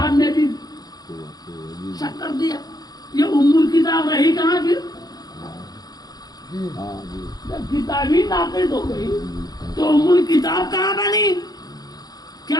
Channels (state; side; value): late; right; 0.19 ms